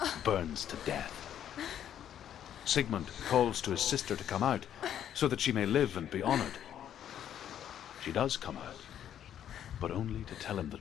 burns to death. Sigmund calls to his sister to come out so that she may live and be honored. She does come out, but only to tell him the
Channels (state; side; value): quieter; right; 10.1 dB